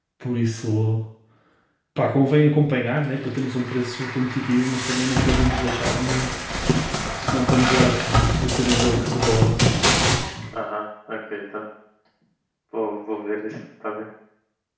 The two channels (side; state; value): both; identical; correlation 1.00